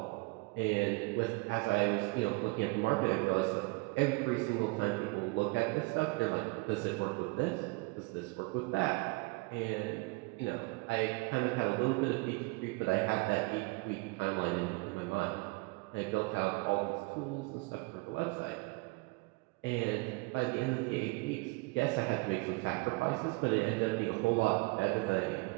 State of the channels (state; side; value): quieter; left; 26.7 dB